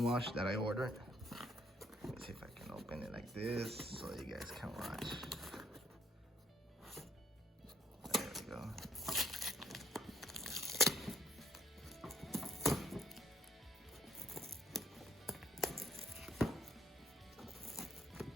wash that I ordered. Let me see if I can open it like this so you guys can watch. There we go.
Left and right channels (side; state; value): both; normal; correlation 0.65